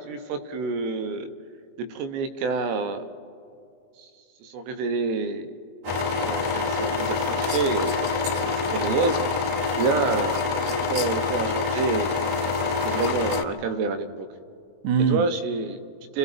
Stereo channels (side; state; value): left; late; 22 ms